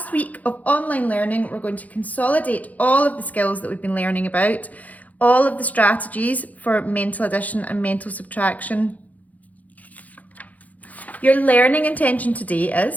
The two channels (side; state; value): right; late; 0.076 ms